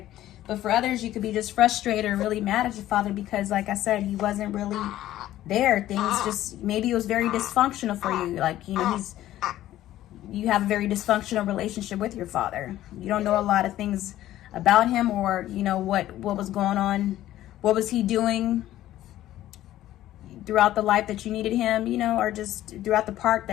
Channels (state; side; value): quieter; right; 13.8 dB